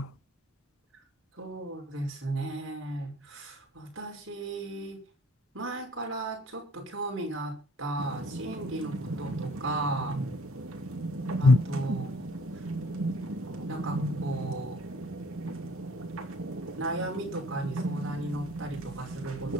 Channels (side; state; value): both; normal; correlation 0.56